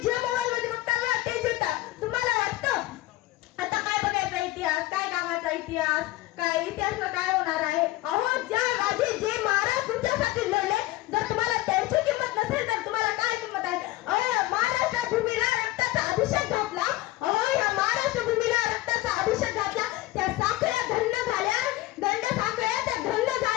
जे मोबाईल मध्ये बघता ना तेच येतात. तुम्हाला वाटतं आता काय बघायचा इतिहास, काय कामाचा इतिहास, काय इतिहासला काय होणार आहे? ज्या राजे जे महाराज तुमच्यासाठी लढले, जर तुम्हाला त्यांची किंमत नसेल तर तुम्हाला काय किंमत आहे? महाराष्ट्र भूमीला रक्ताचा अभिषेक घातला. या महाराष्ट्र भूमीला रक्ताचा अभिषेक घातला. त्या साखळ्या धन्य झाल्या, गंड साखळ्या त्या धन्य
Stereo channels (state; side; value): quieter; right; 17.3 dB